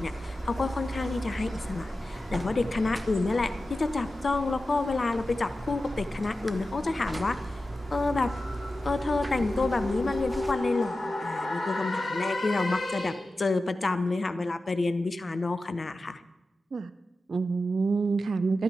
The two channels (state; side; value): normal; both; correlation 0.93